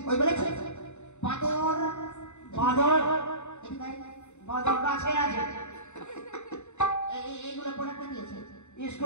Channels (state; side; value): late; right; 0.83 ms